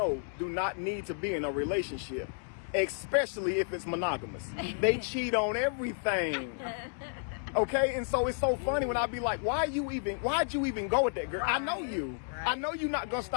do not need to be in a relationship, especially if it's monogamous. They cheat on everything. Okay, and so it's so funny when I be like, why'd you even go with that girl? I know you. I know you're not gonna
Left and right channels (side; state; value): right; silent; digital silence